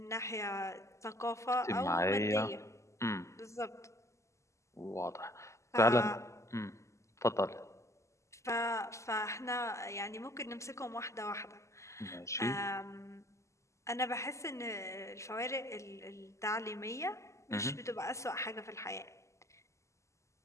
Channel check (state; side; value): late; right; 0.14 ms